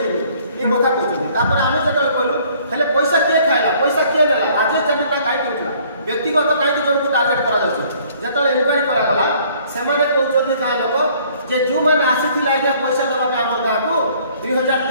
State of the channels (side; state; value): both; inverted; correlation -0.59